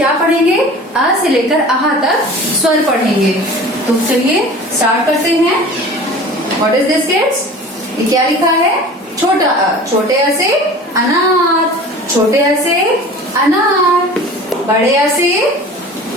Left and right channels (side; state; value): both; normal; correlation 0.40